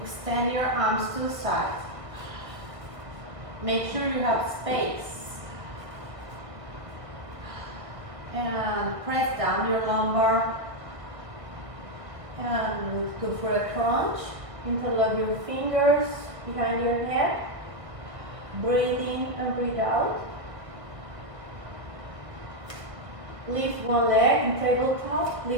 your arms to the side. Make sure you have space. And press down your lumbar. And go for a crunch. Interlock your fingers behind your head. Breathe in and breathe out. Lift one leg in tabletop.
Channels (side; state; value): left; late; 1.5 ms